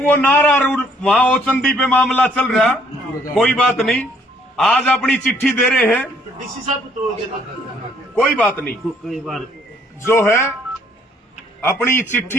नारा वहाँ ओचंदी पे मामला चल रहा, कोई बात नहीं। आज अपनी चिट्ठी दे रहे हैं, डीसी साहब को तोड़ देना। कोई बात नहीं। कई बार जो है अपनी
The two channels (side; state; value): both; normal; correlation 0.64